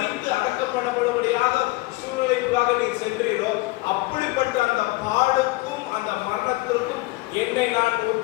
அடக்கம் பண்ணப்படும்படியாக சூழ்நிலைக்குள்ளாக நீர் சென்றீரோ, அப்படிப்பட்ட அந்த பாடுக்கும் அந்த மரணத்திற்கும் என்னை நான்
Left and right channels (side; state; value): right; quieter; 21.1 dB